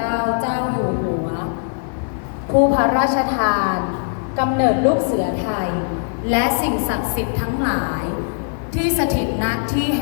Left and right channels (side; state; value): right; silent; 65 dB below the other